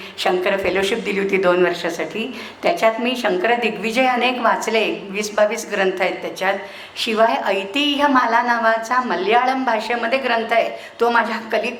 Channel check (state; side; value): identical; both; correlation 1.00